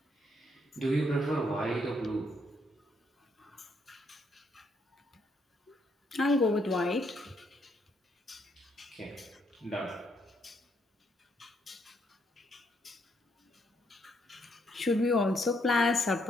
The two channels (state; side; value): normal; both; correlation 0.73